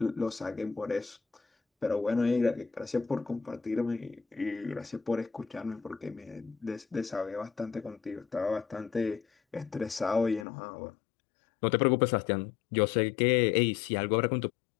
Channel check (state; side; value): drops out; right; at 10.5 s